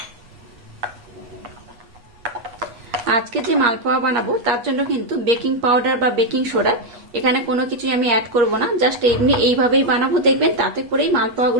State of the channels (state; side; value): late; left; 8.5 ms